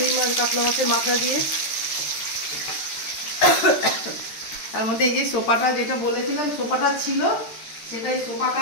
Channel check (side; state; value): right; late; 13 ms